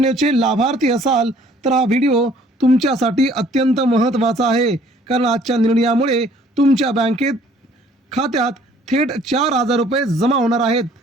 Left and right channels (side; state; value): both; normal; correlation 0.58